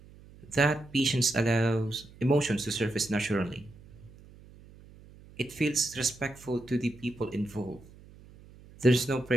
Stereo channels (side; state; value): right; noise; hum, 22 dB below the sound